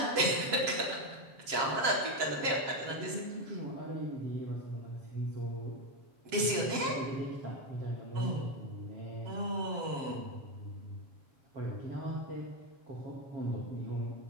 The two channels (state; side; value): late; left; 7.5 ms